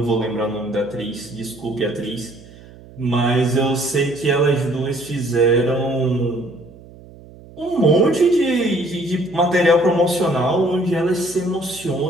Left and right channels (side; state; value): right; noise; hum, 21 dB below the sound